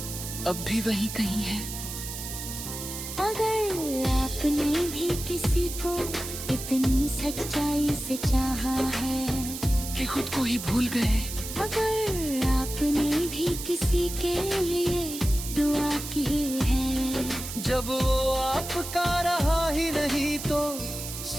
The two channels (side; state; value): right; noise; hiss, 8 dB below the sound